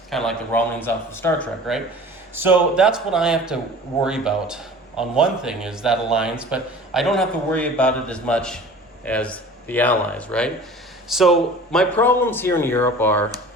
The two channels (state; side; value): normal; both; correlation 0.43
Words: kind of like the Romulans off of Star Trek, right? So that's what I have to worry about. On one thing is that alliance, but I don't have to worry about it as much as the Allies, right? So my problems here in Europe are